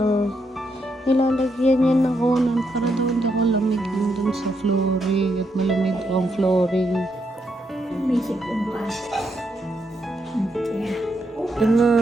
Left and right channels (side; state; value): both; normal; correlation 0.79